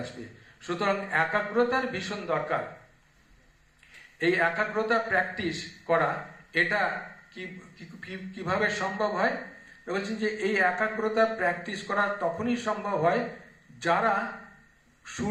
আসবে। সুতরাং একাগ্রতার ভীষণ দরকার। এই একাগ্রতা প্র্যাকটিস করা, এটা কিভাবে সম্ভব হয়? বলছেন যে এই একাগ্রতা প্র্যাকটিস করা তখনই সম্ভব হয় যারা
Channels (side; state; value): both; identical; correlation 1.00